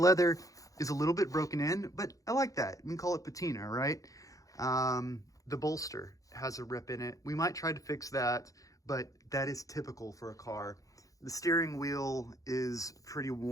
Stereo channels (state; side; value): late; right; 0.16 ms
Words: is a little bit broken in, but I like that. We can call it patina, right? The bolster has a rip in it. We might try to fix that, but that is typical for a car. The steering wheel is pretty